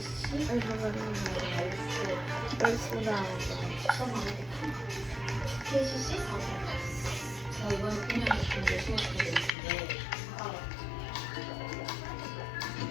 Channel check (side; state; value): right; drops out; at 9.5 s